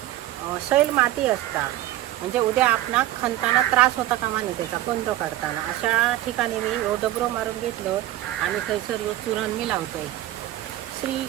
सैल माती असता, म्हणजे उद्या आपणा खणताना त्रास होता कामा नाही त्याचा कंद काढताना. अशा ठिकाणी मी ह्यो डबरो मारून घेतलं आणि थंयसर ह्यो चूरण मी लावतोय. श्री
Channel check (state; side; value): quieter; left; 14.4 dB